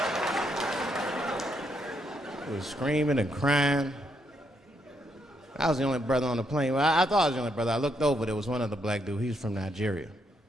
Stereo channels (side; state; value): both; normal; correlation 0.77